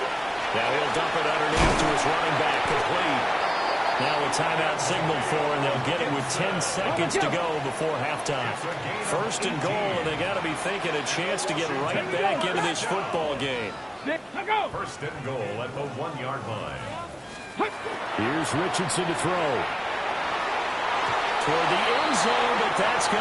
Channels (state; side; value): identical; both; correlation 1.00